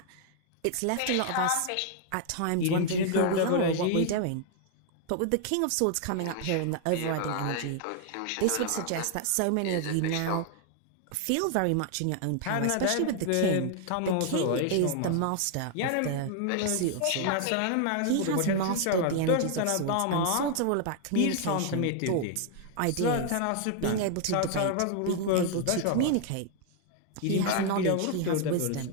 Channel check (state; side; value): different; both; correlation 0.00